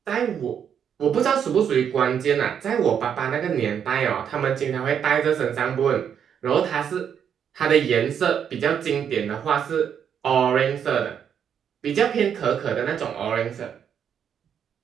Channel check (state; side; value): quieter; left; 8.2 dB